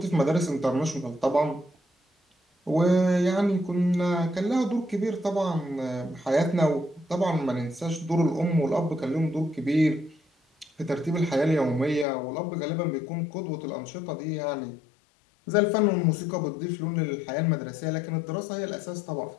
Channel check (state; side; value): drops out; right; at 12.1 s